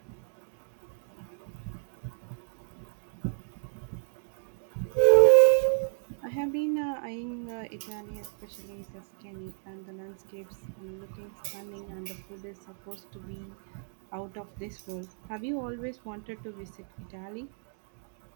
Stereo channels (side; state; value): left; silent; digital silence